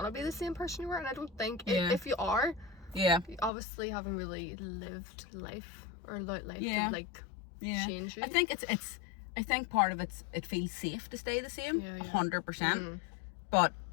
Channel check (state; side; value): drops out; right; at 3.5 s